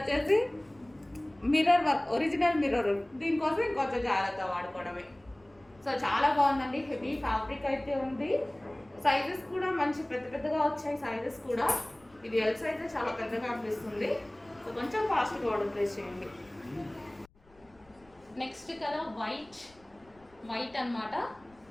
మిర్రర్ వర్క్, ఒరిజినల్ మిర్రర్. దీనికోసం ఇంకొంచెం జాగ్రత్త వాడుకోవడమే. సో చాలా బాగుందండి, హెవీ ఫ్యాబ్రిక్ అయితే ఉంది. సైజెస్ కూడా మంచి పెద్ద పెద్దగా వచ్చాయి సైజెస్ కూడా. ఇది ఎల్ సైజ్ చాలా పెద్దగా అనిపిస్తుంది. సో కొంచెం ఫాస్ట్గా ఆర్డర్ ప్లేస్ చేయండి. నెక్స్ట్ కలర్ వైట్ అన్నమాట.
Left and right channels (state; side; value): noise; left; rumble, 30 dB below the sound